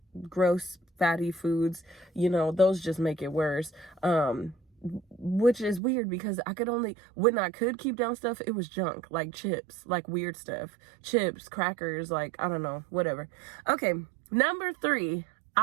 gross fatty foods, those just make it worse. Which is weird, because when I could keep down stuff, it was junk, like chips, like weird stuff, chips, crackers, like, I don't know, whatever. Okay, number 3,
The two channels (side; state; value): left; drops out; at 5.8 s